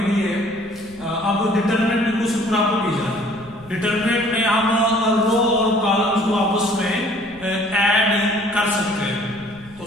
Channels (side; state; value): left; noise; rumble, 23 dB below the sound